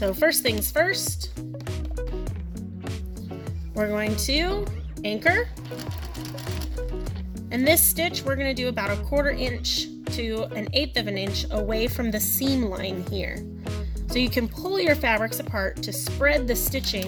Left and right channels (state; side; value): identical; both; correlation 1.00